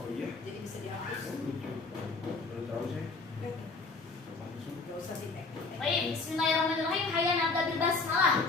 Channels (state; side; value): quieter; right; 3.9 dB